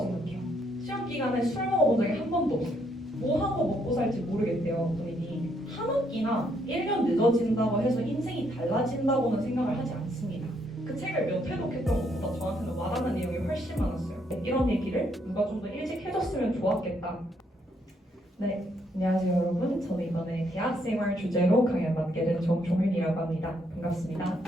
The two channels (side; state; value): both; normal; correlation 0.73